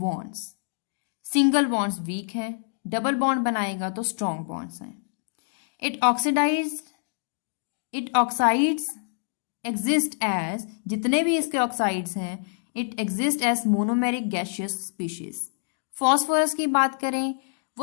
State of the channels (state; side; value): silent; right; digital silence